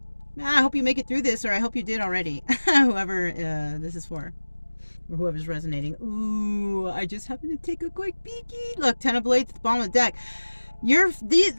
I hope you make it through this, or I hope you did already. Whoever this is for. Or whoever's resonating. Ooh, I just happened to take a quick peeky. Look, 10 of Blades at the bottom of the deck.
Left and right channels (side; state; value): both; inverted; correlation -1.00